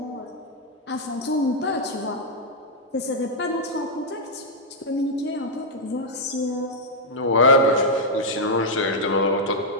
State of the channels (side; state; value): both; normal; correlation -0.04